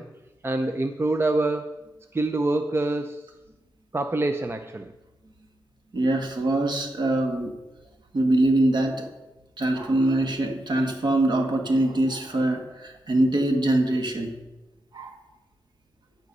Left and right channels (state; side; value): normal; both; correlation 0.85